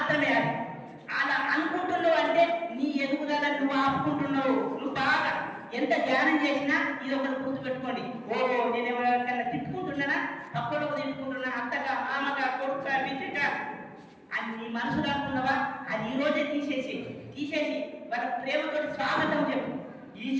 అది. అలా అనుకుంటున్నావు అంటే నీ ఎదుగుదల నువ్వు ఆపుకుంటున్నావు. నువ్వు బాగా ఎంత ధ్యానం చేసినా ఇది ఒకటి గుర్తుపెట్టుకోండి. నేను ఎవరికన్నా తిట్టుకుంటున్నానా, తప్పులకు తిట్టుకుంటున్నా, అత్తగా మామగా కొడుక బిడ్డక అని నీ మనసులో అనుకున్నావా? అది ఈ రోజే తీసేసి వాళ్ళ ప్రేమతో స్వాగతం చెప్పు. ఈ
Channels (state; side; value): identical; both; correlation 1.00